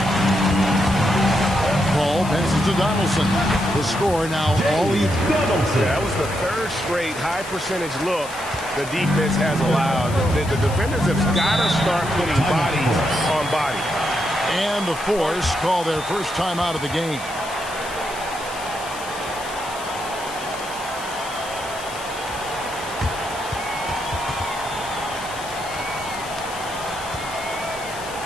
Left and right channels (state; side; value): noise; left; hiss, 13 dB below the sound